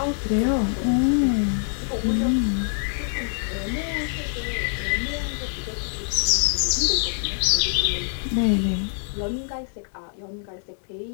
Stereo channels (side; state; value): right; silent; digital silence